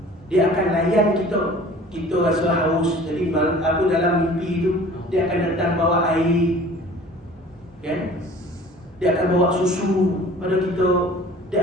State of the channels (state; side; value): normal; both; correlation 0.47